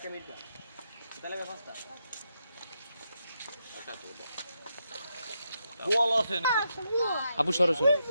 আপু সরো সরো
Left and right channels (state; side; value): inverted; both; correlation -0.82